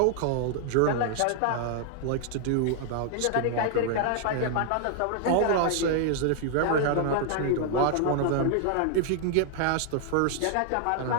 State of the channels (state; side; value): different; both; correlation 0.00